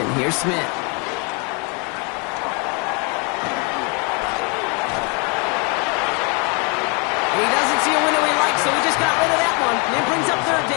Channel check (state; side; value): quieter; right; 33.5 dB